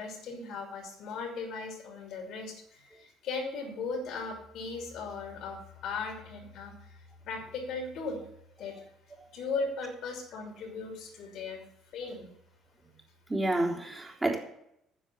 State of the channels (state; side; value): normal; both; correlation 0.65